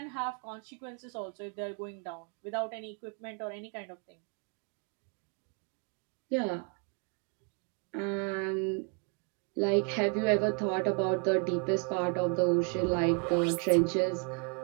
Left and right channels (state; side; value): quieter; left; 37.6 dB